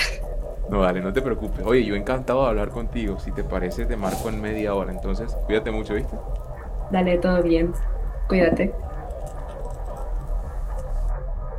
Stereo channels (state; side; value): identical; both; correlation 1.00